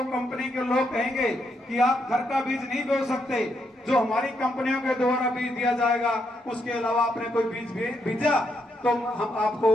कंपनी के लोग कहेंगे कि आप घर का बीज नहीं बो सकते, जो हमारी कंपनियों के द्वारा बीज दिया जाएगा, उसके अलावा आपने कोई बीज भेजा तो हम आपको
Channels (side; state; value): both; normal; correlation 0.78